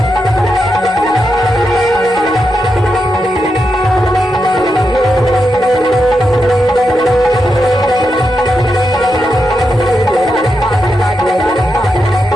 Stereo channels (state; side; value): normal; both; correlation 0.86